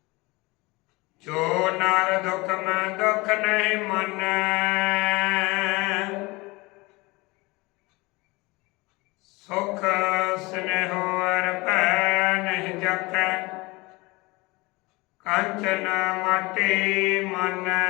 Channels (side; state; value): right; quieter; 23.7 dB